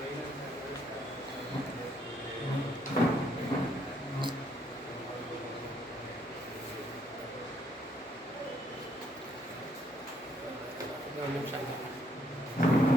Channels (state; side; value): normal; both; correlation 0.70